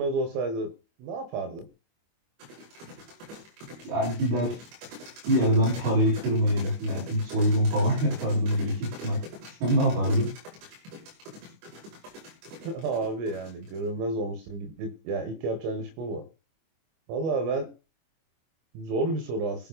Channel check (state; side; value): late; left; 25 ms